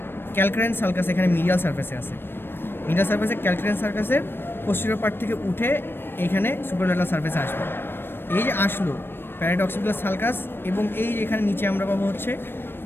ক্যালক্রাইন সালকাস, এখানে মিডিয়াল সারফেসে আছে। মিডিয়াল সারফেসে ক্যালক্রাইন সালকাসের পোস্টেরিয়র পার্ট থেকে উঠে এইখানে সুপারোল্যাটারাল সারফেসে আসবে। এই যে আসলো প্যারাইটো অক্সিপিটাল সালকাস, এবং এই যে এখানে নিচে আমরা পাবো হচ্ছে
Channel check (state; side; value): late; right; 0.10 ms